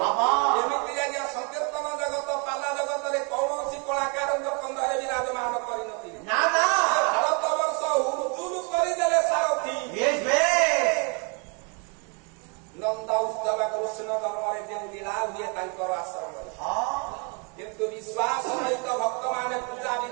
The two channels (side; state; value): left; quieter; 35.1 dB